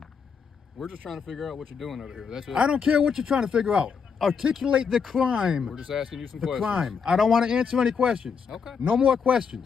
We're just trying to figure out what you're doing over here. That's it. I don't care what you're trying to figure out. Articulate the crime. We're just asking you some The questions. crime. I don't want to answer any questions. Okay. No more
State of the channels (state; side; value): quieter; right; 6.2 dB